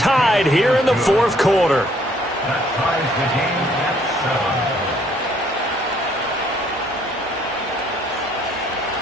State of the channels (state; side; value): normal; both; correlation 0.64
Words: here in the fourth quarter. That ties the game at 7.